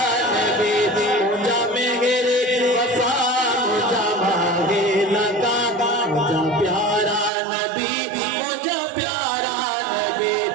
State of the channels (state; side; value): drops out; left; at 7.3 s